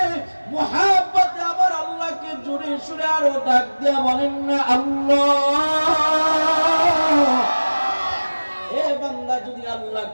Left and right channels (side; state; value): both; inverted; correlation -1.00